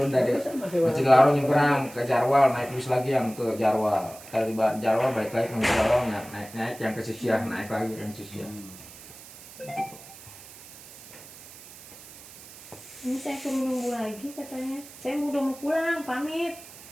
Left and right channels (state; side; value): noise; right; hiss, 18 dB below the sound